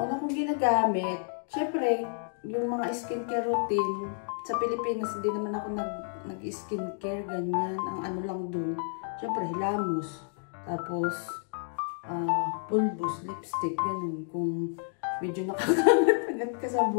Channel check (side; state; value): right; silent; 58 dB below the other